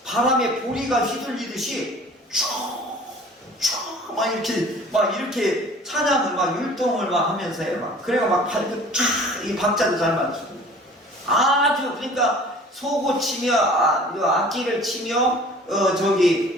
바람에 보리가 휘둘리듯이 이렇게 찬양을 막 율동을 막 하면서 해요. 그래가 막 이 박자도 잘 맞추고 아주 그러니까 소고 치며 악기를 치며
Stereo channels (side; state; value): both; normal; correlation 0.47